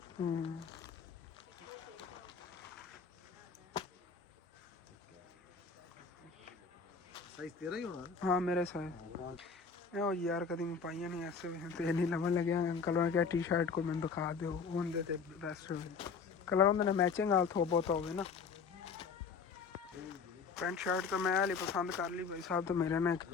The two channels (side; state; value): right; quieter; 5.4 dB